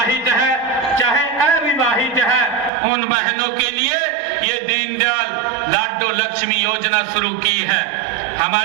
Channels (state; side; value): drops out; left; at 2.7 s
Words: है चाहे अविवाहित है, उन बहनों के लिए ये दीनदयाल लाडो लक्ष्मी योजना शुरू की है।